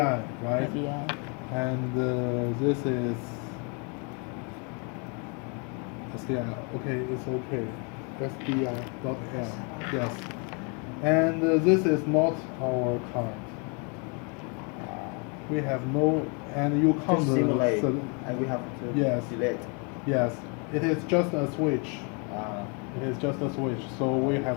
right? Yeah. And this is SDI. Okay, it's okay. SDI.L. Yes. And this is not our card. We have no, and you To count simulate, the. and we have to Yes. delete. Yes, it is just a switch. Uh, It is just a switch, so we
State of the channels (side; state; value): right; quieter; 35.3 dB